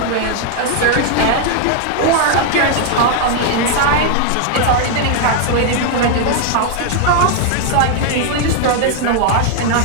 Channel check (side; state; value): both; different; correlation 0.00